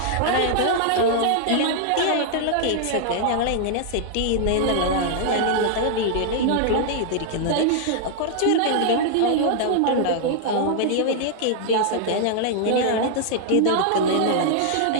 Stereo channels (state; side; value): different; both; correlation -0.01